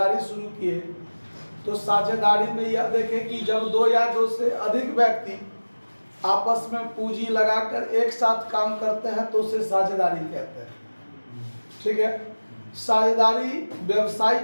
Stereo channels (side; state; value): both; inverted; correlation -1.00